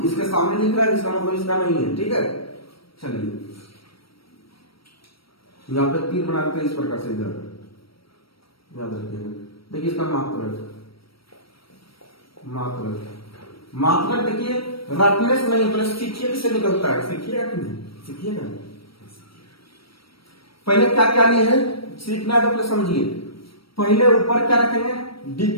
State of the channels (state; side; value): late; right; 0.75 ms